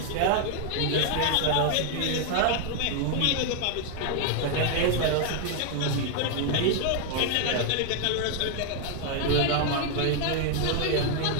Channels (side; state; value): both; different; correlation 0.00